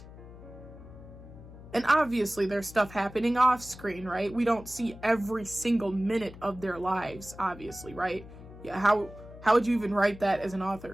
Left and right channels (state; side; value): noise; left; hum, 17 dB below the sound